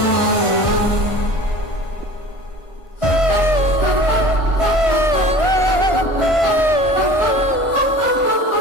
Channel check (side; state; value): right; late; 1.5 ms